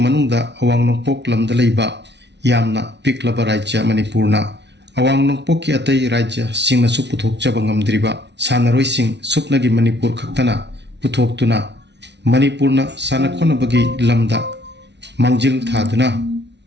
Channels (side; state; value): left; late; 0.50 ms